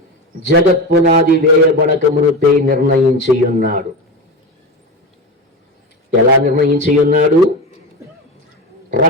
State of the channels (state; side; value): normal; both; correlation 0.22